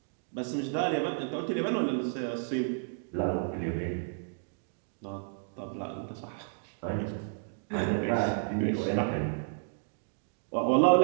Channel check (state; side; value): silent; left; digital silence